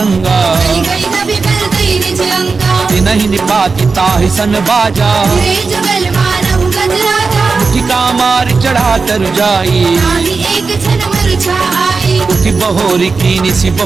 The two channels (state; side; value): quieter; left; 4.5 dB